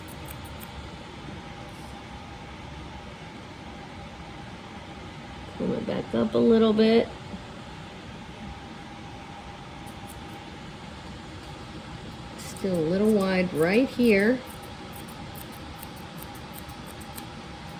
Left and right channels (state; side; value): identical; both; correlation 1.00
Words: Pull it back up a little bit. Still a little wide right here.